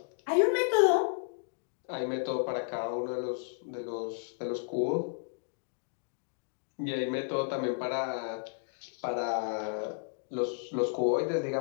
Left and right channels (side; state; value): right; silent; digital silence